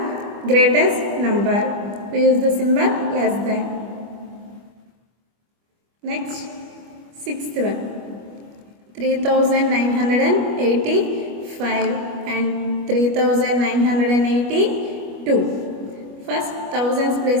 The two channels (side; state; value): left; late; 25 ms